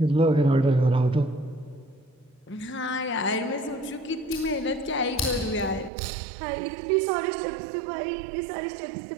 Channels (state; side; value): drops out; left; at 5.9 s